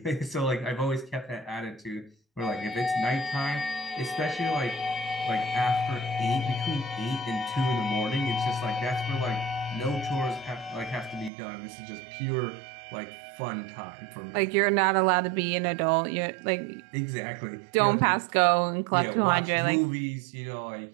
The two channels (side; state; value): left; drops out; at 11.3 s